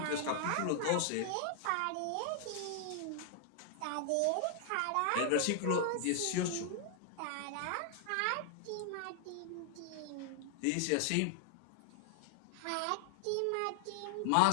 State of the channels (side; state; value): both; different; correlation 0.00